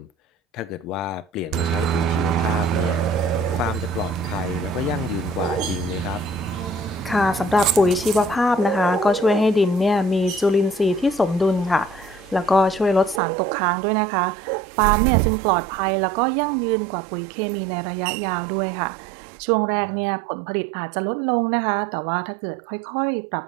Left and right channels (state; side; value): drops out; left; at 13.2 s